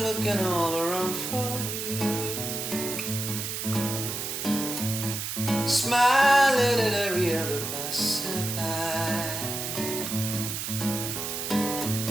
looking all around for you, smiling at every other passerby,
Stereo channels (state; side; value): noise; right; hiss, 4 dB below the sound